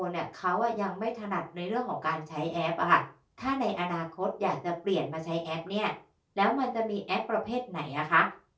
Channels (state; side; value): identical; both; correlation 1.00